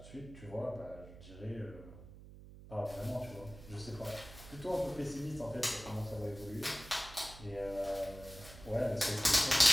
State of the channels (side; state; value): right; noise; hum, 16 dB below the sound